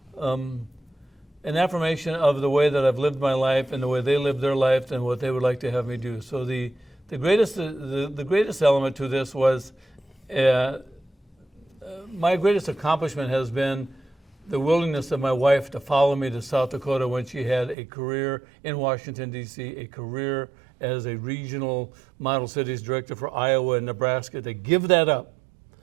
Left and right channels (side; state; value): left; drops out; at 17.8 s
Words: An affirmation of the way that I've lived my life and the way they lived their life and what they would like to have me do. So the greatest element to this was my greatest accomplishment has been the willingness of my wife to follow me to South Dakota when she had a career in Washington, D.C., a career as a regional model cities director for Iowa and Nebraska, to give that up.